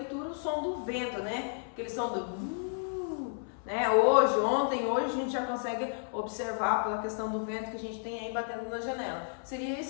o som do vento, né? Aquele som do né? Hoje a gente já consegue observar pela questão do vento que a gente tem aí batendo na janela. Seria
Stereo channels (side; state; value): right; silent; 56 dB below the other